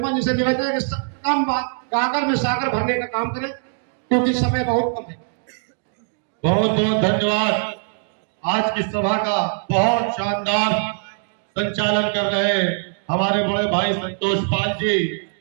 जी से निवेदन है कि कम बात गागर में सागर भरने का काम करें, क्योंकि समय बहुत कम है। बहुत बहुत धन्यवाद। आज की सभा का बहुत शानदार संचालन कर रहे हमारे बड़े भाई संतोष पाल जी।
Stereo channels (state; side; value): silent; left; digital silence